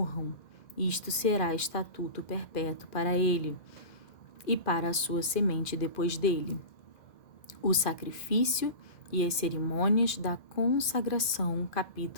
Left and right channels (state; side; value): late; right; 2.4 ms